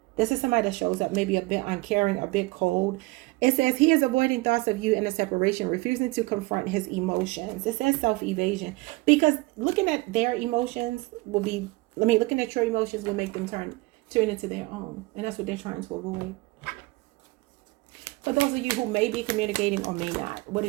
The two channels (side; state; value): left; quieter; 23.1 dB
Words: This is somebody that shows up maybe a bit uncaring, a bit cold. It says he is avoiding thoughts of you in a separation, refusing to confront his emotions. It says self-evasion. Because looking at their emotions will be, looking at your emotions will make them turn into their own. And that's what they're trying to avoid. For those of you who may be communicating or may not, what